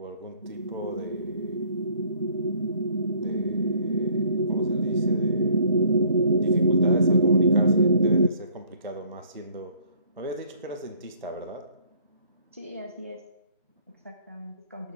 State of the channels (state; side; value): inverted; both; correlation -0.59